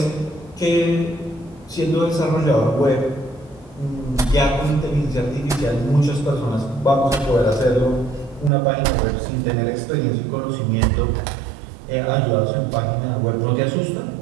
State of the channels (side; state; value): left; drops out; at 8.5 s